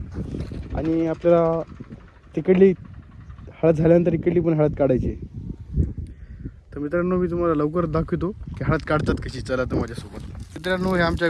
आणि आपल्याला तिकडली हळद झाल्यानंतर इकडली पण हळद काढायची आहे. तर मित्रांनो मी तुम्हाला लवकर दाखवतो की हळद काढतात कशी. चला तर माझ्यासोबत. मित्रांनो हे आमच्या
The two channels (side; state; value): both; identical; correlation 1.00